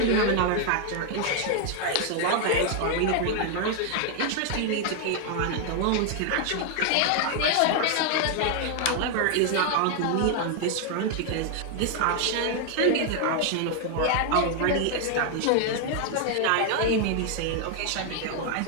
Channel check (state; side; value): different; both; correlation 0.00